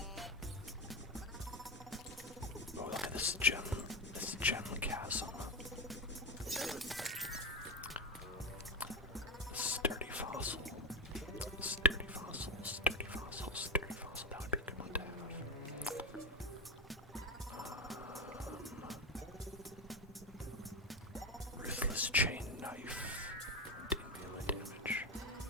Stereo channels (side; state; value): both; normal; correlation 0.16